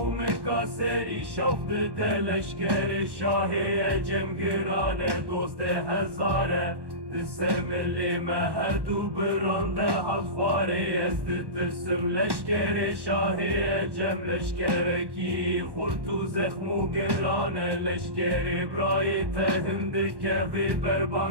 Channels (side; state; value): left; late; 1.1 ms